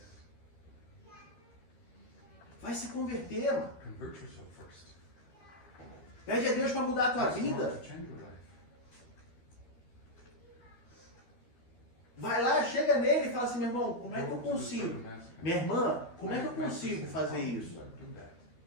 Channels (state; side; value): late; right; 13 ms